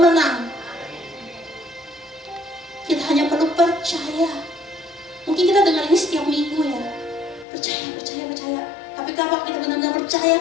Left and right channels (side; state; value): right; drops out; at 7.5 s